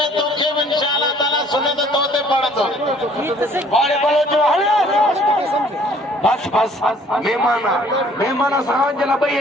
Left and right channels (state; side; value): normal; both; correlation 0.57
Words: में तोखे इंशाअल्लाह ताला सुने तो तोते पड़तो बाड़े बलोच बस मेहमान साहब जला भई